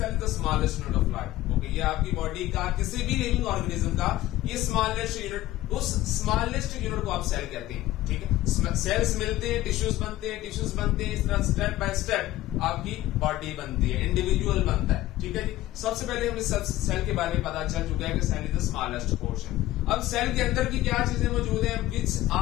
the smallest unit of life. Okay, ये आपकी body का किसी भी living organism का ये smallest unit, उस smallest unit को आप सेल कहते हैं. ठीक है, सेल्स मिलते हैं, टिश्यूज बनते हैं, इस तरह स्टेप बाय स्टेप आपकी बॉडी बनती है, इंडिविजुअल बनता है. ठीक है जी. सबसे पहले हमें सेल के बारे में पता चल चुका है कि cell is the smallest portion. अब सेल के अंदर की क्या चीजें मौजूद हैं, which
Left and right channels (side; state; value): right; quieter; 15.6 dB